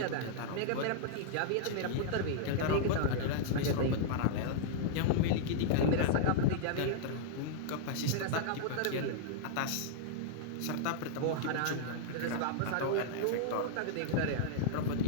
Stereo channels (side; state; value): both; different; correlation -0.01